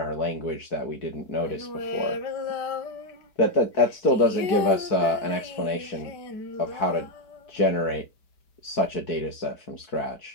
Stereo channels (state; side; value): late; right; 4.6 ms